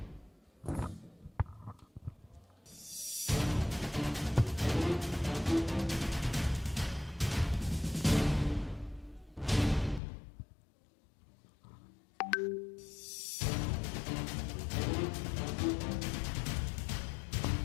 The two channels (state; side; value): drops out; right; at 10.0 s